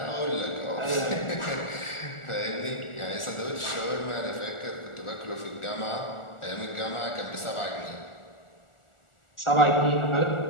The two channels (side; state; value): right; late; 1.4 ms